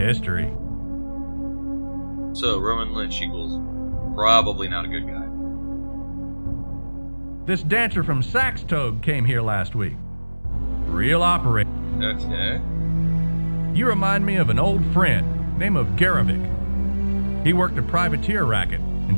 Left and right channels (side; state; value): both; inverted; correlation -1.00